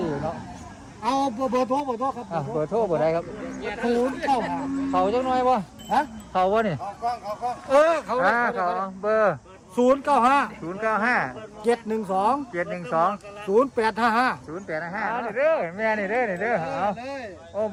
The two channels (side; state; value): both; identical; correlation 1.00